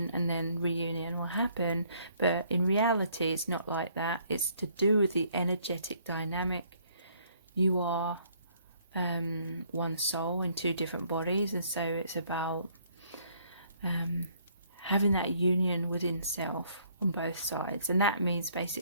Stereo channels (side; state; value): both; inverted; correlation -0.65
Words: and then reunion will happen. But in reality, it's not like that. It's to do with the energetic dynamic. You are one soul in two different bodies, and so it's about having that union within self on both sides. And that means